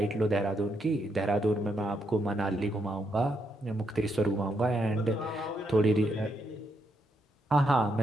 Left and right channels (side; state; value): both; normal; correlation 0.79